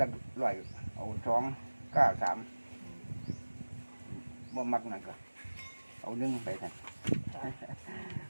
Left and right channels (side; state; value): both; inverted; correlation -1.00